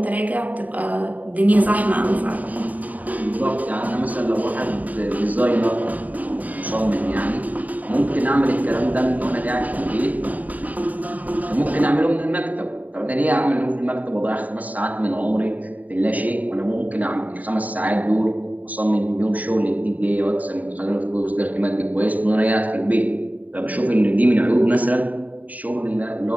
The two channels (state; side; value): late; left; 0.076 ms